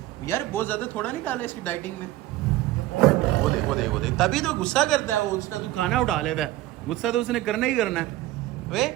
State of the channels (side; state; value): left; quieter; 16.1 dB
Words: यार, बहुत ज्यादा थोड़ा नहीं डाला इसकी डाइटिंग में। वो देख तभी तो गुस्सा करता है वो, उसका तू खाना उठा लेता है, गुस्सा तो उसने करना ही करना है। वे